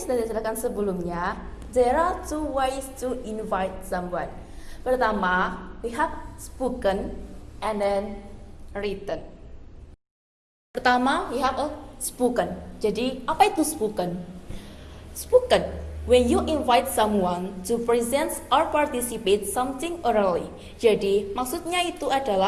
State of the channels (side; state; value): both; identical; correlation 1.00